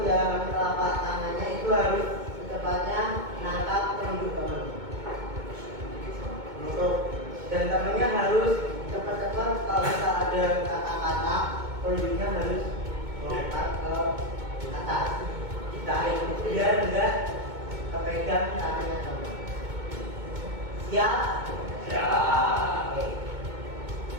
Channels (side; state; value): left; late; 2.2 ms